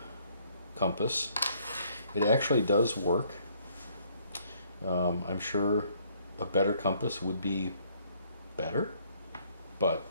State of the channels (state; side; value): inverted; both; correlation -0.65